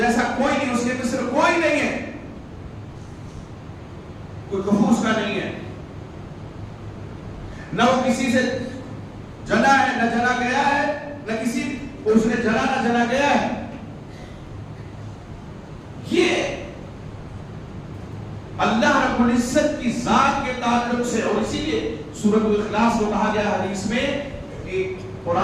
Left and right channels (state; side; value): identical; both; correlation 1.00